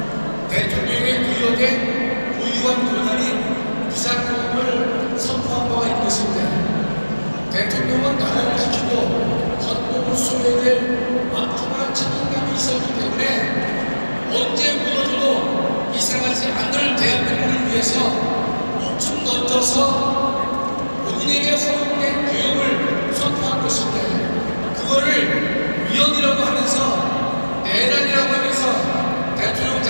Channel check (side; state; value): both; inverted; correlation -1.00